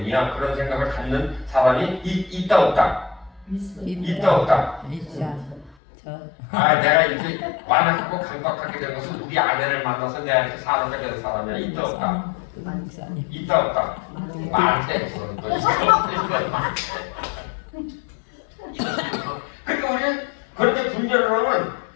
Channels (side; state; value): right; drops out; at 5.8 s